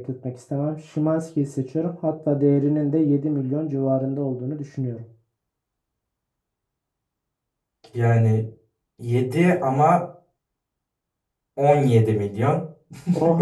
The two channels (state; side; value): identical; both; correlation 1.00